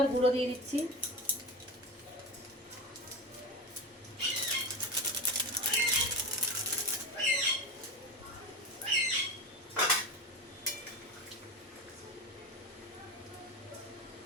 গুঁড়ো দিয়ে দিচ্ছি।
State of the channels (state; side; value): normal; both; correlation 0.24